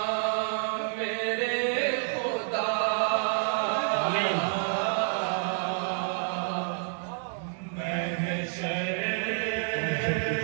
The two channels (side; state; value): left; silent; 59 dB below the other